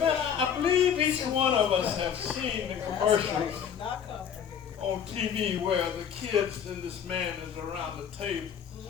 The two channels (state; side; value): quieter; right; 8.1 dB